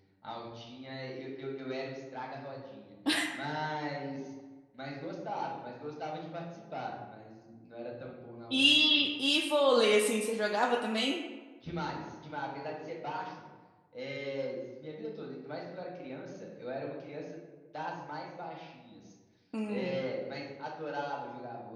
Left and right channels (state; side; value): identical; both; correlation 1.00